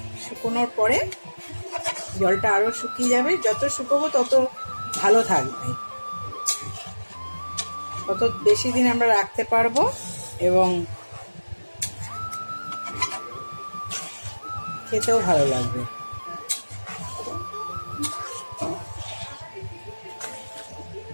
শুকোনোর পরে জলটা আরো শুকিয়ে যাবে। যত শুকোবো তত ভালো থাকবে, তত বেশি দিন আমরা রাখতে পারবো এবং খেতেও ভালো লাগবে।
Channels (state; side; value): inverted; both; correlation -1.00